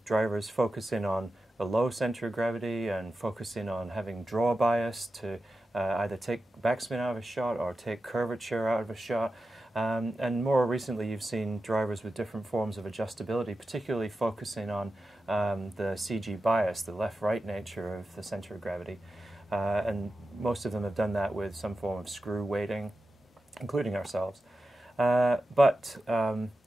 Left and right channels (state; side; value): normal; both; correlation 0.92